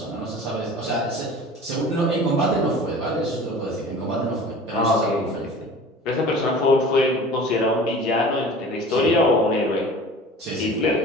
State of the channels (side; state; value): both; normal; correlation 0.41